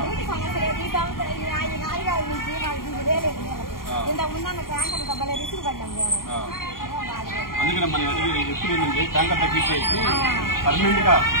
అందుకని మనం ఎప్పుడు ఏంటంటే ట్యాంకర్ తగ్గించేసి పర్మనెంట్ గా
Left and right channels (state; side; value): late; right; 0.92 ms